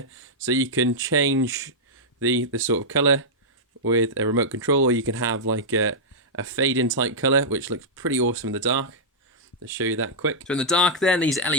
so you can change the sort of colour with a remote control, or you can have like a fade in type colour, which looks pretty awesome in the dark. Let's show you that quick. So in the dark then, these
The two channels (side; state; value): both; normal; correlation -0.09